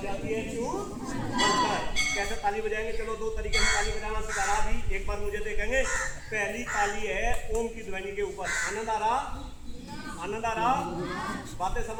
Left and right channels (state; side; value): identical; both; correlation 1.00